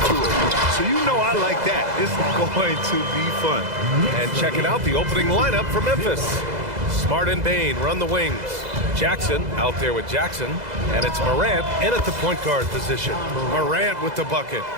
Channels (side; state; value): left; late; 2.0 ms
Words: So you know I like that. It's going to be fun. And checking out the opening lineup for Memphis. Smart and Bain run the wings. Jackson out there with Jackson. And it's Morant in at the point guard position. Morant with the bucket.